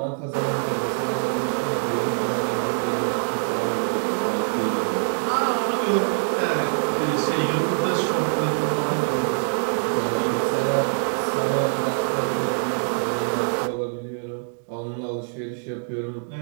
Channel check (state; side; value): silent; left; digital silence